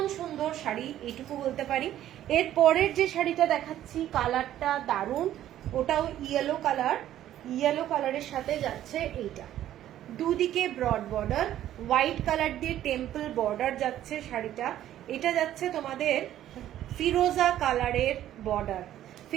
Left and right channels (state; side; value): quieter; left; 12.3 dB